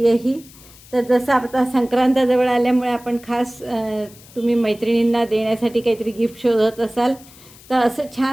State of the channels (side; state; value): left; noise; hiss, 22 dB below the sound